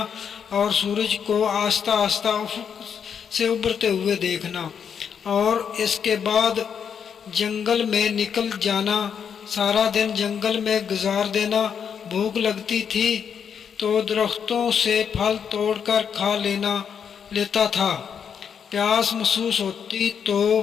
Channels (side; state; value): right; quieter; 7.4 dB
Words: اور سورج کو آہستہ آہستہ افق سے ابھرتے ہوئے دیکھنا، اور اس کے بعد جنگل میں نکل جانا، سارا دن جنگل میں گزار دینا۔ بھوک لگتی تھی تو درختوں سے پھل توڑ کر کھا لیتا تھا، پیاس محسوس ہوتی تو